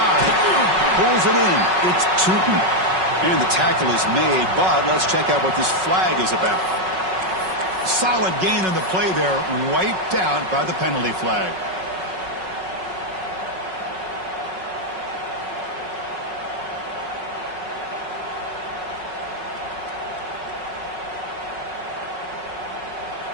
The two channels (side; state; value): left; late; 5.4 ms